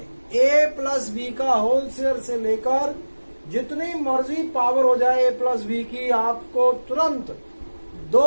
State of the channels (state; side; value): inverted; both; correlation -1.00